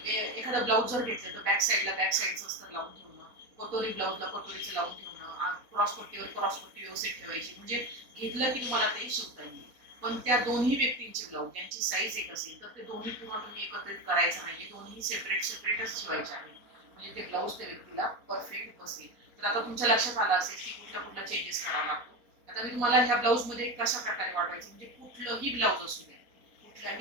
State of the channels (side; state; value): left; late; 4.0 ms